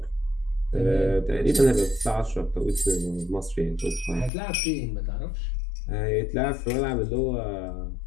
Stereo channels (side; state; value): right; drops out; at 4.3 s